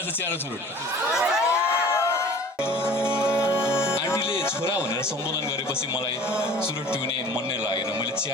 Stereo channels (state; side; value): normal; both; correlation 0.45